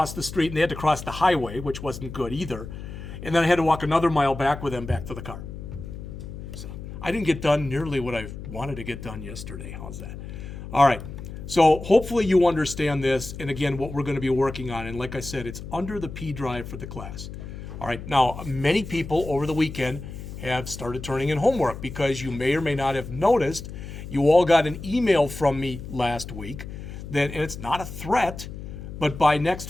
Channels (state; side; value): noise; left; hum, 10 dB below the sound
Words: the street. And they had to cross the highway, which wasn't good either. And then I had to walk another mile back with them back to the car. So I didn't get done nearly what I wanted to get done yesterday. How's that? All right. So hopefully you understand this. And again, what we're going to be working on. And like I said, it's under the P drive for the class. All right. Now, many people over the weekend have started turning in homework because you may or may not have noticed you all got an email from me last week that, and it's not a threat, but by next